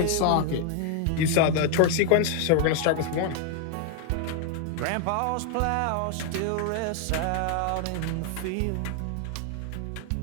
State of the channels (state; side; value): different; both; correlation 0.00